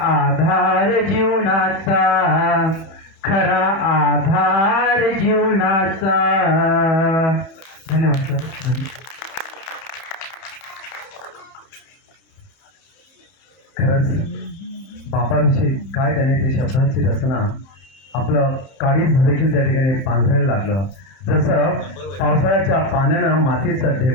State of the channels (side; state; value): right; late; 31 ms